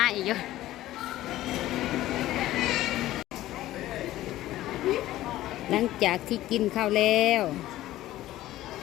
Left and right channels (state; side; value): quieter; right; 15.1 dB